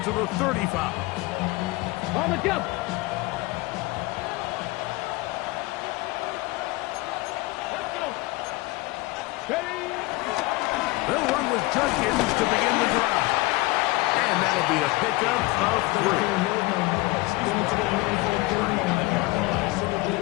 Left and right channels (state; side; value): quieter; right; 21.9 dB